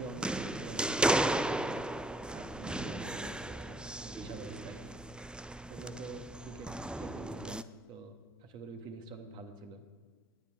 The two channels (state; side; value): normal; both; correlation 0.69